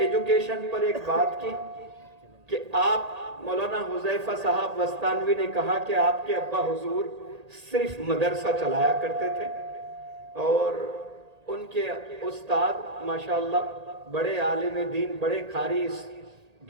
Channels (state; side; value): late; left; 1.8 ms